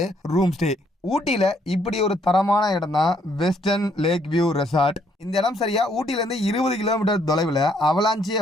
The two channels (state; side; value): normal; both; correlation 0.69